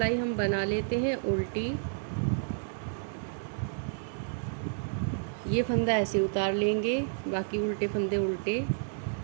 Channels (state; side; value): silent; left; digital silence